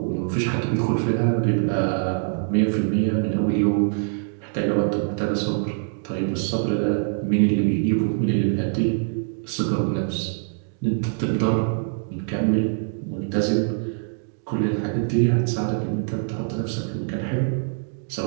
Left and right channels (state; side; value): silent; left; digital silence